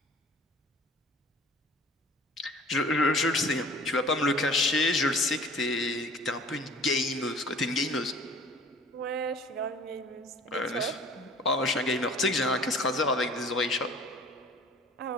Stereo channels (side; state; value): both; normal; correlation 0.48